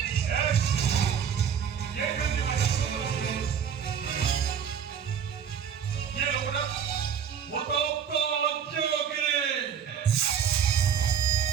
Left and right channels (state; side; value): quieter; left; 7.9 dB